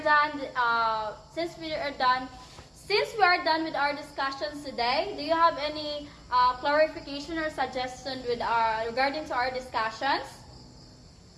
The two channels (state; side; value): identical; both; correlation 1.00